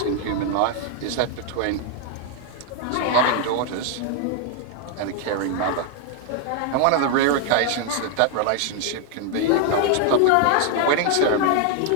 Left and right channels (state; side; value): different; both; correlation 0.00